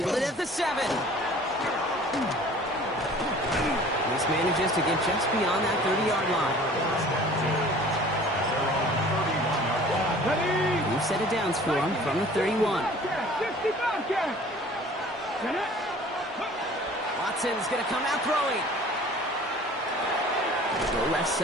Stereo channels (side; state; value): both; normal; correlation 0.48